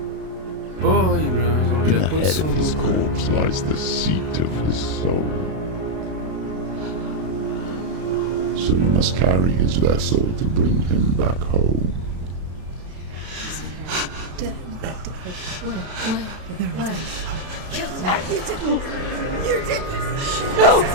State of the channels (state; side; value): late; left; 32 ms